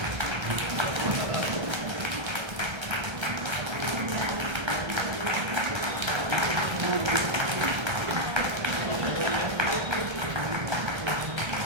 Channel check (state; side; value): late; left; 1.3 ms